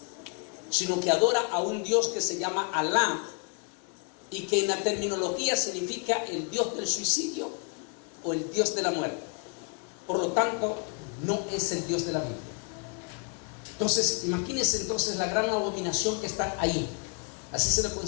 sino que adora a un Dios que se llama Alá, y que en la terminología significa el Dios del suicidio o el Dios de la muerte. Por lo tanto, no es el Dios de la Biblia. Entonces, imagínense entonces la gran abominación que está ahí. Así se le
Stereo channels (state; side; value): quieter; right; 37.6 dB